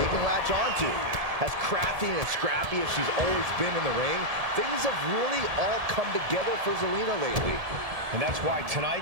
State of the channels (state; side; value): late; left; 1.7 ms